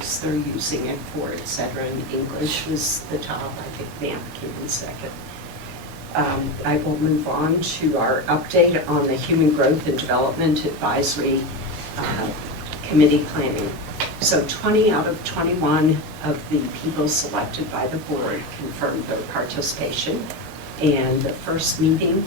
they're using it for, et cetera, and English was the top. I think math came in second. I will move on to our update on the Human Growth and Development Advisory Committee planning. So 20 out of 21 of the people selected by the board confirmed their participation. And the first meeting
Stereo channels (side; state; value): both; normal; correlation 0.19